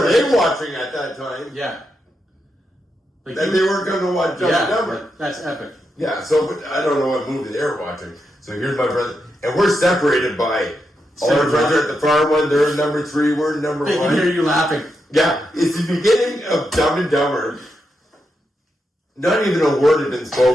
they watching at that time? Yeah. They weren't going to watch Dumb and Dumber. That's epic. Yeah, so but I don't know what movie they were watching. So here's my brother. And we're separated by all our friends are at the far one. They're in number 3. We're in number 1. They can hear you laughing. Yeah. It's the beginning of Dumb and Dumber. Not even a word had been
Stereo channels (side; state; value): both; normal; correlation 0.85